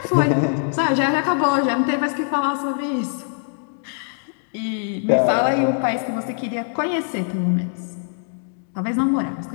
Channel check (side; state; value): right; silent; digital silence